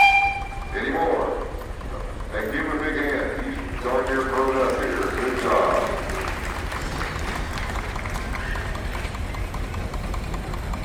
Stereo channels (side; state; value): both; identical; correlation 1.00